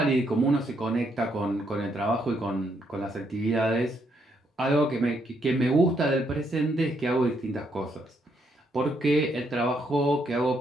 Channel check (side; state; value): both; normal; correlation 0.74